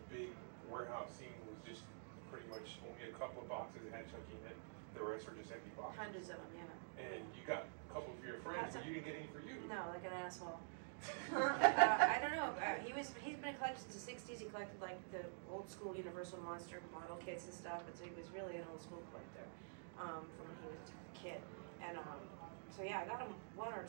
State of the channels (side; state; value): left; silent; digital silence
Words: big warehouse scene was just pretty much only a couple of boxes that had Chucky in it. The rest were just empty boxes. Hundreds of them, yeah. And you got a couple for your friends, but you didn't get any for you. No, like an asshole. I don't know. He's been a collector since the '60s. He collected like the old school Universal Monster model kits and stuff. But so he was really an old school collector from when he was a kid. And so yeah, I got him one or